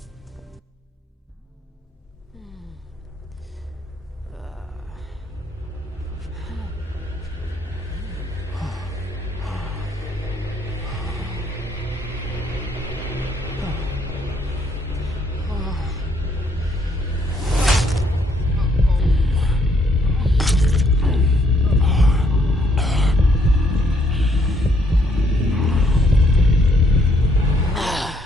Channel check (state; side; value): normal; both; correlation 0.69